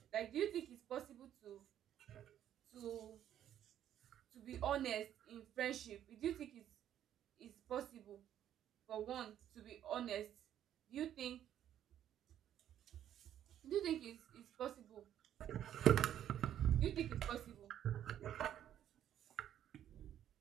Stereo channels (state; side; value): quieter; left; 10.8 dB